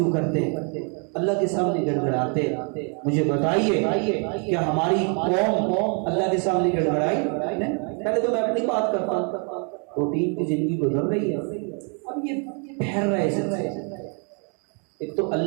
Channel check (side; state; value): left; quieter; 38.9 dB